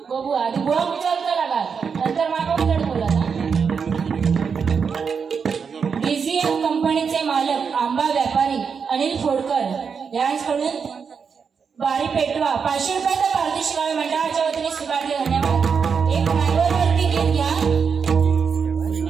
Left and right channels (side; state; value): left; quieter; 6.1 dB